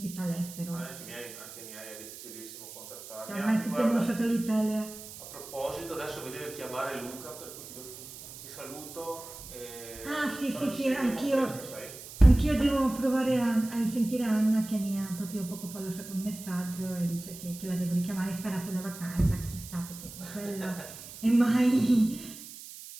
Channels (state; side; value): noise; right; hiss, 14 dB below the sound